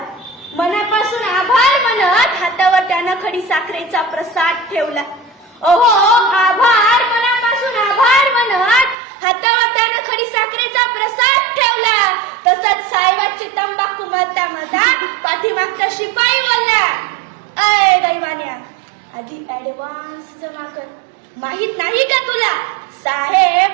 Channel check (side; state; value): left; drops out; at 9.0 s